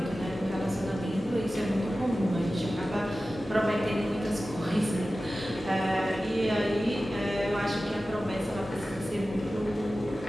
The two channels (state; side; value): normal; both; correlation 0.95